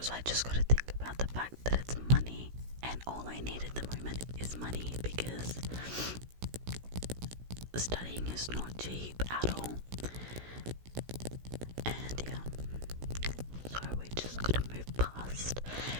So I just gotta think about the fact that it's money, and all I need at the moment is money, because studying is not cheap at all. And yeah, so we just gotta move past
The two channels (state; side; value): late; left; 16 ms